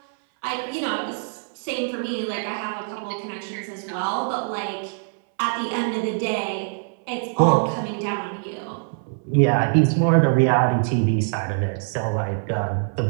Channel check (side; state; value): left; silent; 63 dB below the other